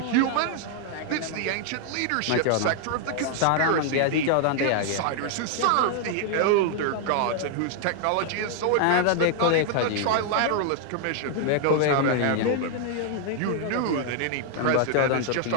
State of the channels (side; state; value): both; different; correlation 0.00